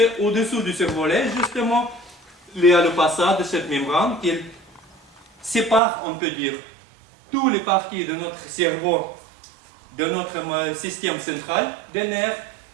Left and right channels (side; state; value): left; drops out; at 5.8 s